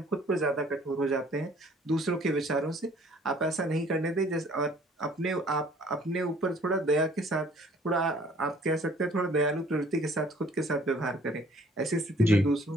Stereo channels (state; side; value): normal; both; correlation 0.56